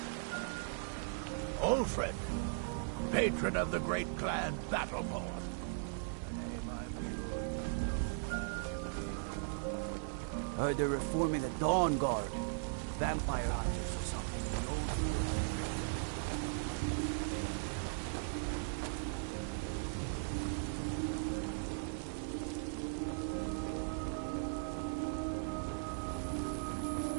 Ulfred, patron of the great clan Battleborn. Heard they're reforming the Dawn Guard. Vampire hunters or something. The old rule.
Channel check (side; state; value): left; silent; digital silence